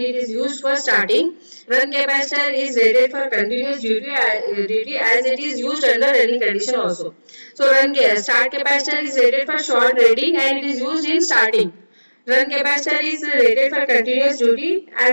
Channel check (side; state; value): both; inverted; correlation -1.00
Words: is used for starting. Run capacitor is rated for continuous duty as it is used under running condition also. So start capacitor is rated for short rating and it is used in starting. Run capacitor is rated for continuous duty